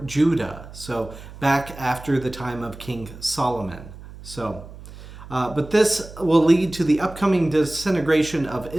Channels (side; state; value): right; noise; hum, 16 dB below the sound